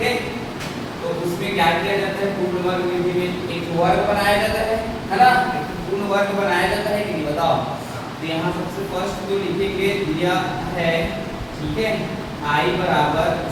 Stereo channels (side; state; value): both; identical; correlation 1.00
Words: तो उसमें क्या किया जाता है? पूर्ण वर्ग विधि में एक वर्ग बनाया जाता है ना। पूर्ण वर्ग बनाया जाता है कि नहीं बताओ। तो यहाँ सबसे फर्स्ट जो लिखेंगे दिया है, ठीक है, I बराबर